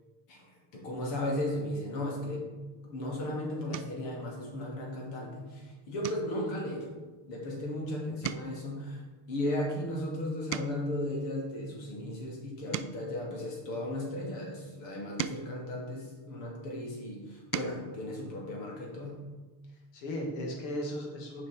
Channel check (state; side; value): late; right; 6.7 ms